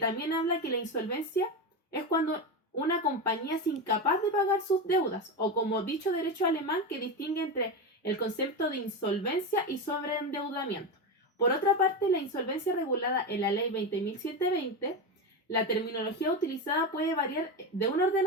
habla que la insolvencia es cuando una compañía es incapaz de pagar sus deudas, o como dicho derecho alemán, que distingue entre el concepto de insolvencia y sobreendeudamiento. Por otra parte, la insolvencia regulada en la ley 20.720, la terminología utilizada puede variar de un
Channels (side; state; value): both; normal; correlation 0.17